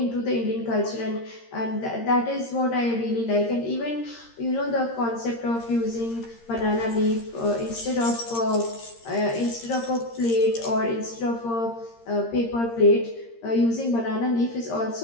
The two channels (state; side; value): late; right; 13 ms